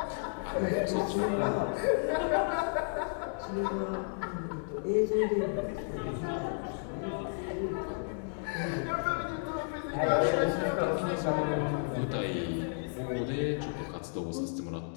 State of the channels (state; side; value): silent; right; digital silence